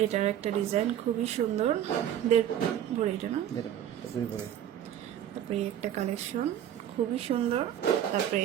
এটার একটা ডিজাইন খুবই সুন্দর, 1.5 ভরি এটা না। তারপরে একটা কালেকশন খুবই সুন্দর। তারপরে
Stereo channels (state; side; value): quieter; left; 10.5 dB